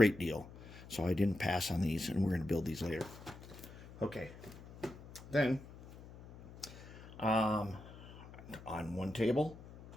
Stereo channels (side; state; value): left; noise; hum, 17 dB below the sound